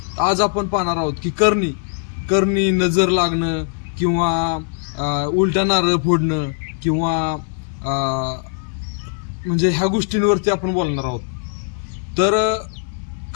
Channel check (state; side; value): silent; right; 66 dB below the other